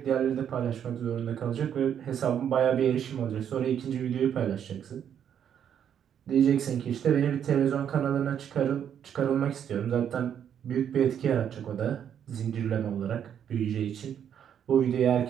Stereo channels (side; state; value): left; quieter; 8.9 dB